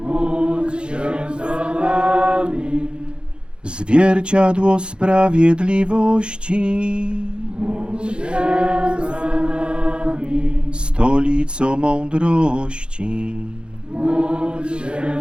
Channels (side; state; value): left; late; 0.054 ms